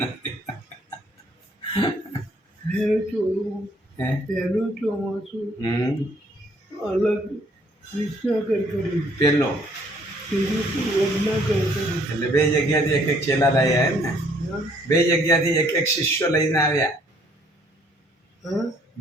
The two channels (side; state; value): both; normal; correlation 0.63